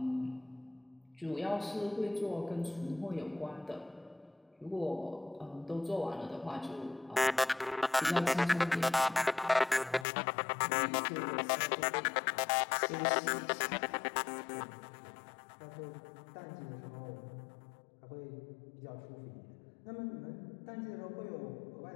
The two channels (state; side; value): drops out; right; at 10.1 s